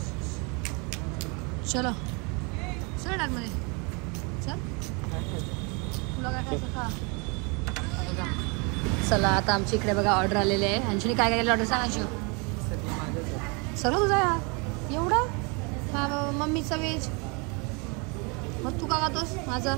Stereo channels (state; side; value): quieter; left; 31.4 dB